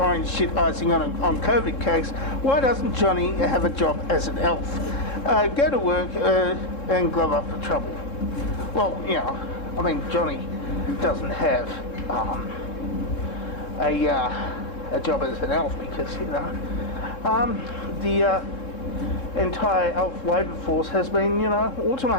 shit icing on COVID cakes, why doesn't Johnny have a job as an elf? Go to work and glove up for trouble. Well, Johnny doesn't have a job as an elf because, the entire elf labour force has been,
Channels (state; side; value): late; right; 3.7 ms